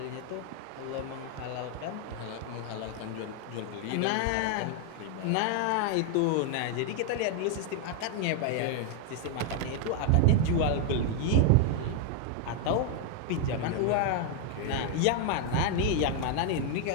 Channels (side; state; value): both; different; correlation 0.00